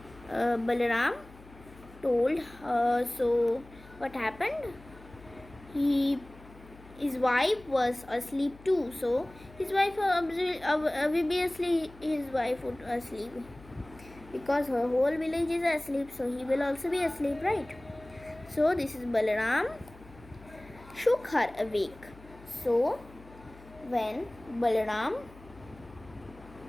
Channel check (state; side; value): noise; left; hum, 21 dB below the sound